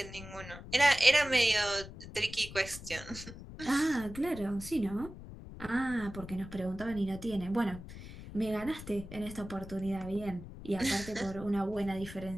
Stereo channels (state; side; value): noise; left; rumble, 13 dB below the sound